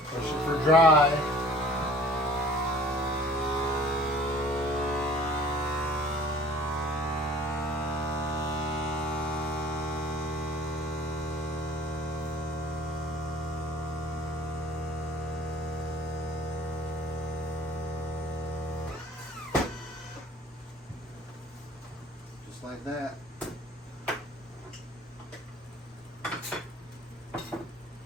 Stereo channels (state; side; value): normal; both; correlation 0.49